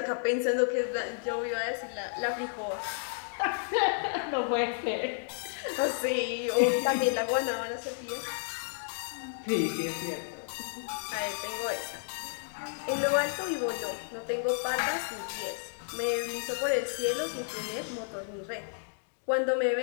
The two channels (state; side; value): silent; right; digital silence